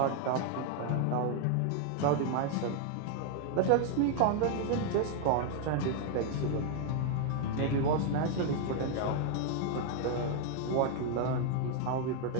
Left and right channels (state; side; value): different; both; correlation 0.00